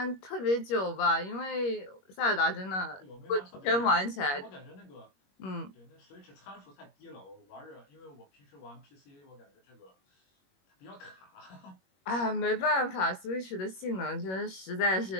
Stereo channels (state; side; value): late; right; 21 ms